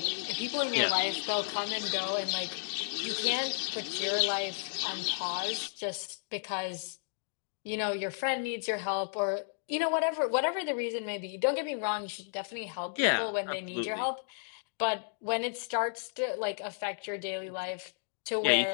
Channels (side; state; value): right; silent; digital silence